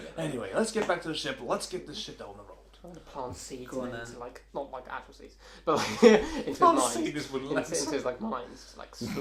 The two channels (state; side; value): identical; both; correlation 1.00